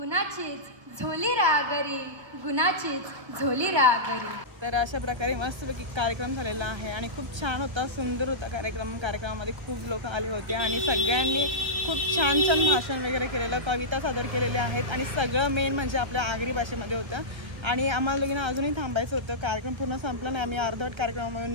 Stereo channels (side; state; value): left; late; 1.2 ms